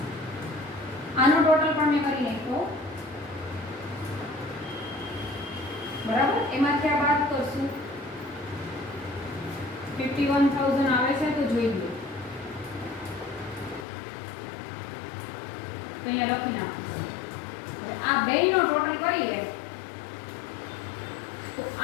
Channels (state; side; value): drops out; right; at 13.9 s